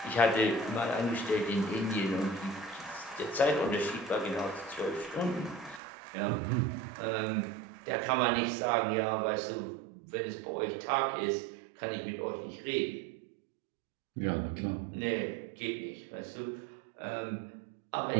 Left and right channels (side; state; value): left; drops out; at 5.8 s